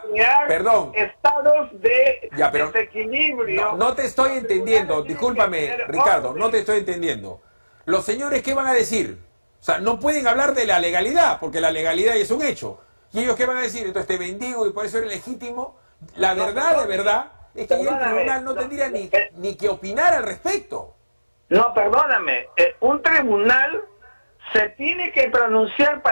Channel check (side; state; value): both; inverted; correlation -1.00